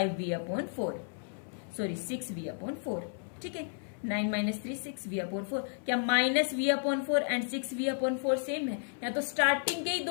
सॉरी 6V/4, ठीक है। 9 - 3 6V/4। क्या -V/4 एंड 6V/4 सेम है? या तो स्टार्टिंग के ही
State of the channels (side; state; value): right; silent; 56 dB below the other